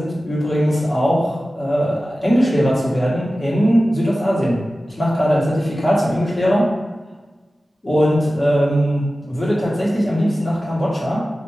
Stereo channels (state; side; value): normal; both; correlation 0.95